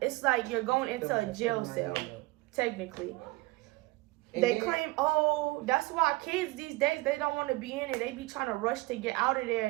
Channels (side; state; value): left; quieter; 21.7 dB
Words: like you're going into a jail cell, technically. They claim, oh, that's why kids these days, they don't want to be in it. They be trying to rush to get out of there